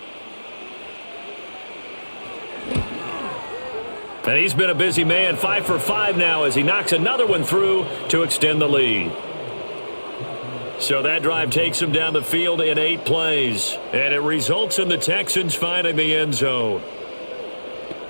And he's been a busy man, 5 for 5 now as he knocks another one through to extend the lead. So that drive takes him down the field in 8 plays. And it results in the Texans finding the end zone.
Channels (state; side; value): inverted; both; correlation -1.00